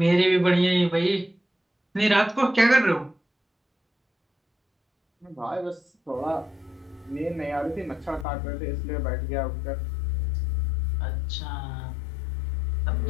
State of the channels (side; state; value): right; drops out; at 8.2 s